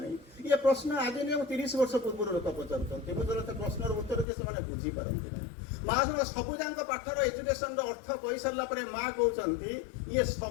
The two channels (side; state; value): right; drops out; at 4.2 s